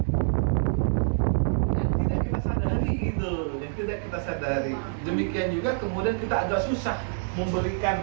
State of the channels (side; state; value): left; silent; digital silence